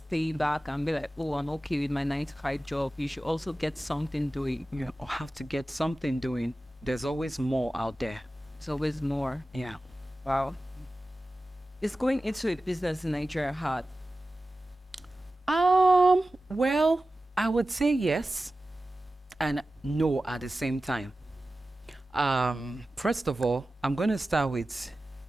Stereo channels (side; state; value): both; normal; correlation 0.95